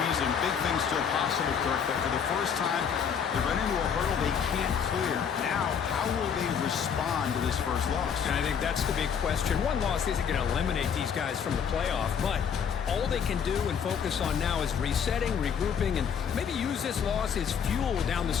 Big things still possible, Kirk, but for the first time, they run into a hurdle they can't clear. Now, how will they respond to this first loss? And I think that's the big question. One loss isn't going to eliminate these guys from the playoff, but all they can do and focus on now is resetting, regrouping, and maybe use this loss as fuel down the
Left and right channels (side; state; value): right; quieter; 7.3 dB